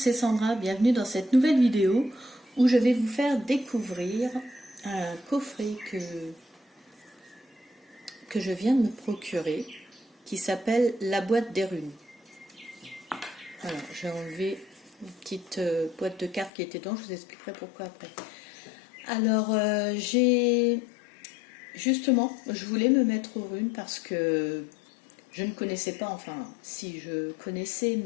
Sandra, bienvenue dans cette nouvelle vidéo où je vais vous faire découvrir un coffret que je viens de me procurer qui s'appelle La boîte des runes. Alors, j'ai enlevé une petite boîte de cartes qui était dedans, je vous expliquerai pourquoi après. Alors, justement, je voulais me mettre aux runes parce que je ne connaissais pas, enfin, si je connaissais,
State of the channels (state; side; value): drops out; right; at 16.5 s